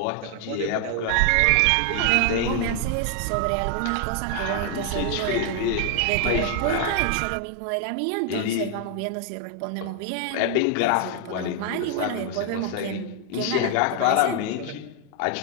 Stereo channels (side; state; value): both; different; correlation 0.00